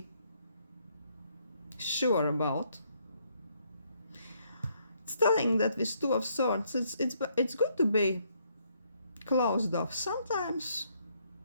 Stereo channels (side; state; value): both; inverted; correlation -0.71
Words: sure about. It's telling that with 2 of Swords, it's good to be closed off sometimes,